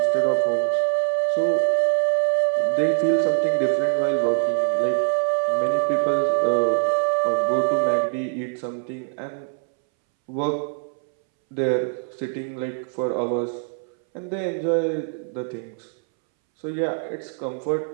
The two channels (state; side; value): silent; left; 63 dB below the other